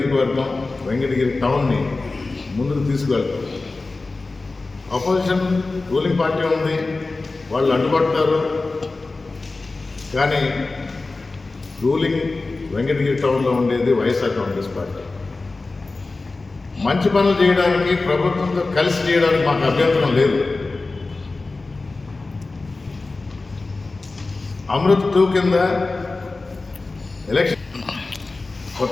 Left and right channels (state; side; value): quieter; right; 3.5 dB